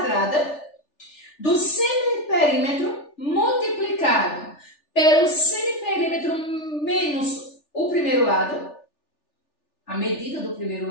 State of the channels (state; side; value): late; right; 3.4 ms